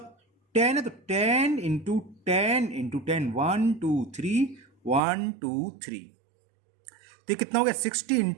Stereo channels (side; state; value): left; drops out; at 5.0 s